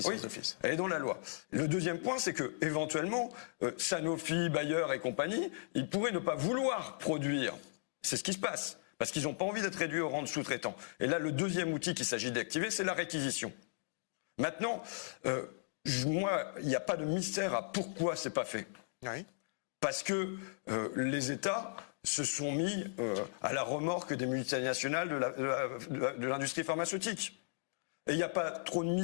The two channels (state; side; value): silent; right; digital silence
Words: d'office. Elle est dans la loi. Le deuxième point, c'est que éventuellement, Sanofi, Bayer et compagnie, ils pourraient ne pas vouloir produire. C'est ce qui se passe. Parce qu'ils n'ont pas envie d'être réduits au rang de sous-traitants. Et là, le deuxième outil qu'il s'agit d'activer, c'est la réquisition. Maintenant, moi, il n'y a pas de mystère à pourquoi c'est pas fait. Oui. Parce que les États se sont mis à la remorque des multinationales de l'industrie pharmaceutique. Et il n'y a pas trop de